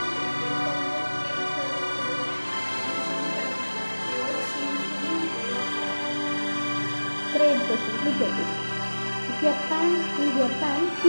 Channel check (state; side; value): inverted; both; correlation -1.00